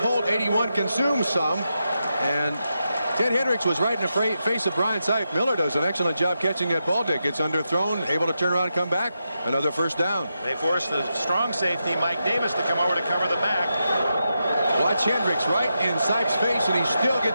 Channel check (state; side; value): inverted; both; correlation -0.87